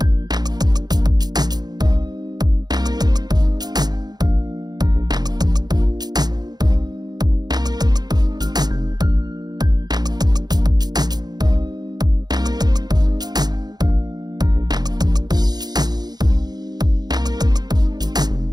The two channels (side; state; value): left; late; 0.20 ms